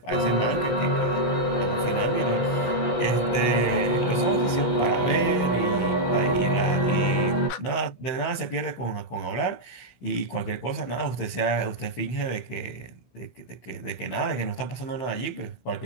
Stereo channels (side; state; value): right; late; 16 ms